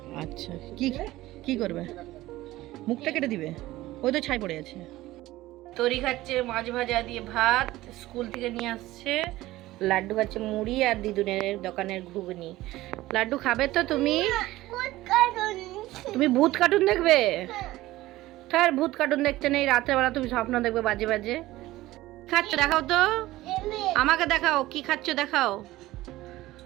আচ্ছা, কি কি করবে? মুখটা কেটে দিবে? ওই তো ছাই পড়ে আছে। তরি খাচ্ছে মাছ ভাজা দিয়ে ভাত, স্কুল থেকে নিয়ে আসছে। লাড্ডু খাচ্ছে মুড়ি আর দিদুনের দোকানের ঘুগনি। লাড্ডু খাবে তো তুমি? তুমি ভূত কার্টুন দেখবে? তার ভূত কার্টুন দেখতে নেই, রাত্রেবেলা তুমি স্বপ্ন দেখবে বাজে বাজে। খাচ্ছ দেখাও তো, আমাকে দেখাও কি খাচ্ছ দেখাও।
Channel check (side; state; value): left; quieter; 17.0 dB